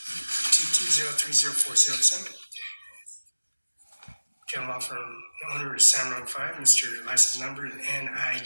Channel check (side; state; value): both; inverted; correlation -1.00